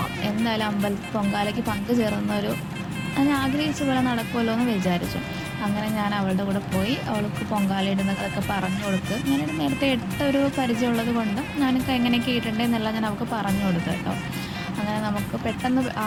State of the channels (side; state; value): both; identical; correlation 1.00